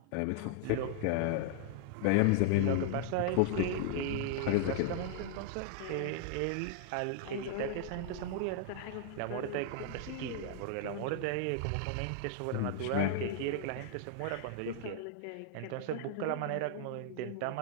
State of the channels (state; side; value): different; both; correlation 0.00